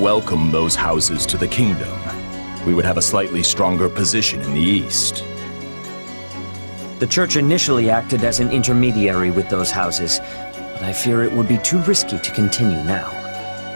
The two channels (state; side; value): inverted; both; correlation -1.00